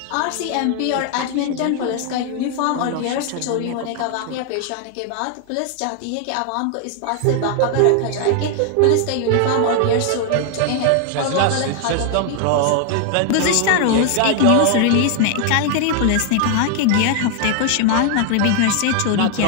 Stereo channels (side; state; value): both; different; correlation 0.00